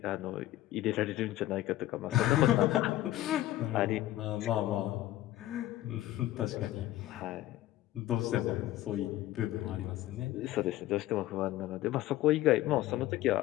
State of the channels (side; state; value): right; quieter; 15.1 dB